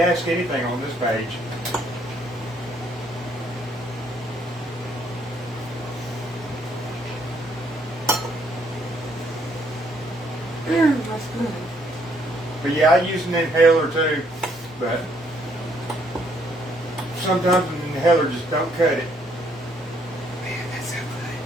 ask anything on this page. That's good. But yeah, I use an inhaler too. But sometimes an inhaler just don't cut it. Man, that's so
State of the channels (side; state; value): both; normal; correlation 0.68